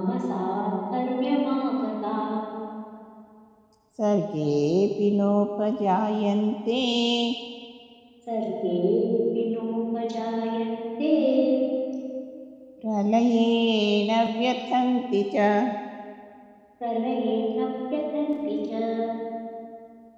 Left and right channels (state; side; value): identical; both; correlation 1.00